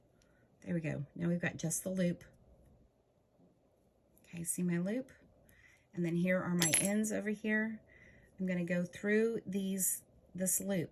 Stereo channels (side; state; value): both; identical; correlation 1.00